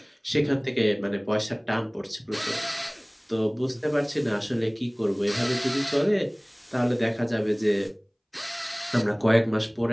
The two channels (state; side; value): identical; both; correlation 1.00